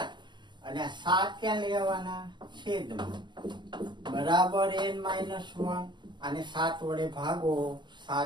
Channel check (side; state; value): left; late; 0.22 ms